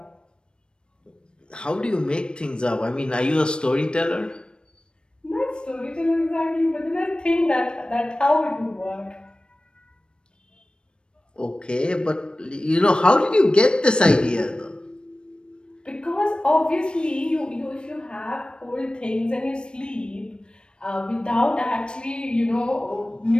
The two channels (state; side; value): late; right; 0.053 ms